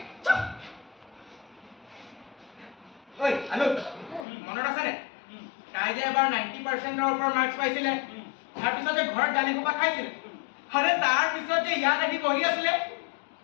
ঐ আলু মনত আছেনে তাই যে এবাৰ 90%ৰ ওপৰত মাৰ্কছ পাইছিলে তাৰপিছত যে ঘৰত গালি সোপা খাইছিলে আৰে তাৰপিছত যে ইয়াত আহি বহি আছিলে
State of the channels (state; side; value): drops out; right; at 4.2 s